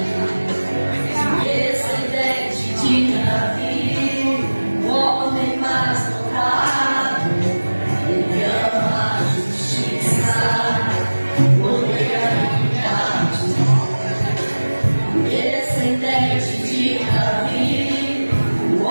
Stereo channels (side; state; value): both; inverted; correlation -1.00